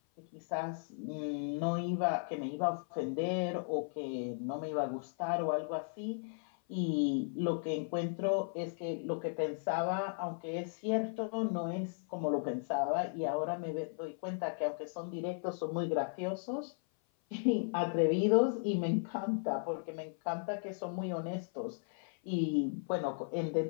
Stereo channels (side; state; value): right; silent; 54 dB below the other